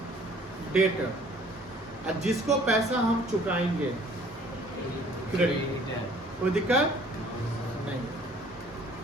डेटर। और जिसको पैसा हम चुकाएंगे, क्रेडिटर। कोई दिक्कत नहीं।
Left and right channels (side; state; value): both; normal; correlation 0.55